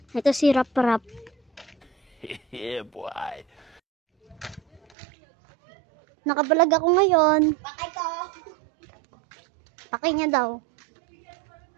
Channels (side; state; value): left; drops out; at 4.8 s